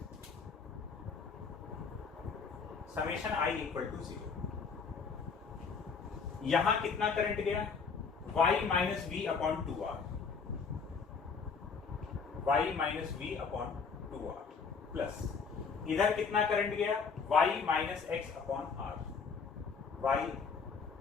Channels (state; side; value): quieter; right; 5.4 dB